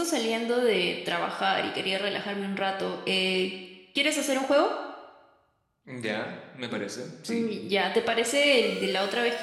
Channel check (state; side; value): identical; both; correlation 1.00